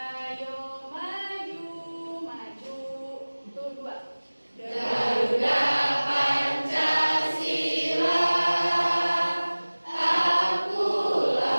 maju, maju. Tuh dua. Garuda Pancasila,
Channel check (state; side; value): inverted; both; correlation -1.00